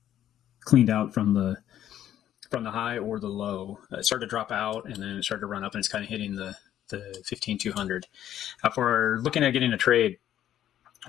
cleaned out from the high or the low. It started to drop out, and then it started to run up, and it's kind of hitting the 15,200. For looking at getting a trade,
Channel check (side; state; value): right; quieter; 11.4 dB